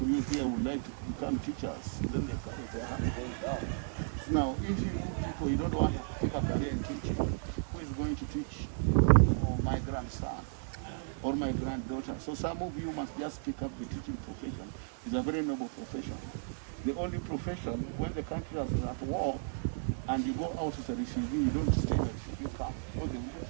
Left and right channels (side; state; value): left; silent; digital silence